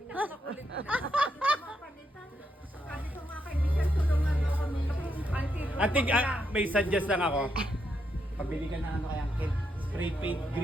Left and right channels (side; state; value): both; normal; correlation 0.80